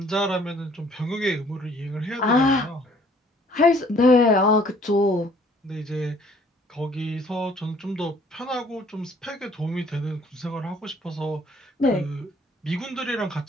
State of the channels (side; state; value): both; normal; correlation 0.59